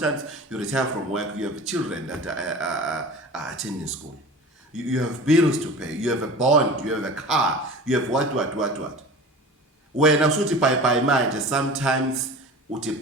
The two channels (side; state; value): both; normal; correlation 0.36